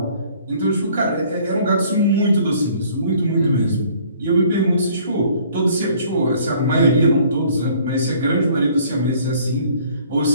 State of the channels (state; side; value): inverted; both; correlation -0.57